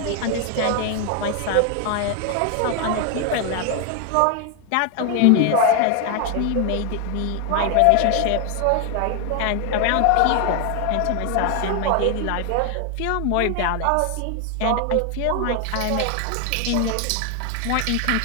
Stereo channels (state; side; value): different; both; correlation 0.00